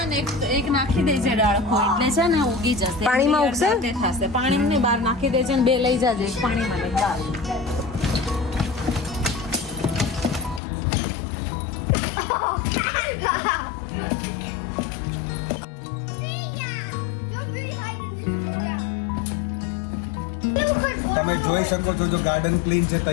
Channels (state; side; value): drops out; right; at 10.6 s